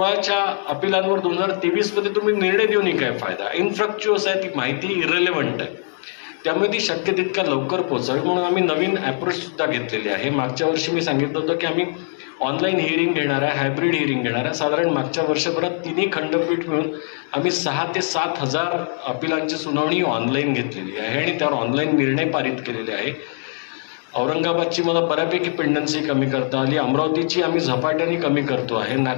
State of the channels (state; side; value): silent; right; digital silence